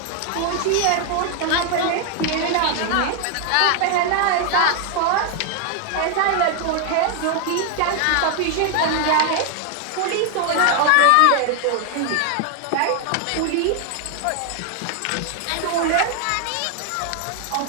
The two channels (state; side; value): different; both; correlation 0.00